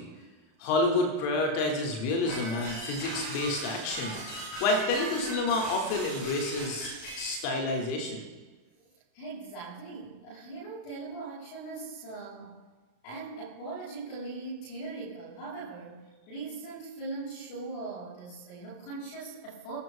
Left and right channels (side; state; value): right; late; 36 ms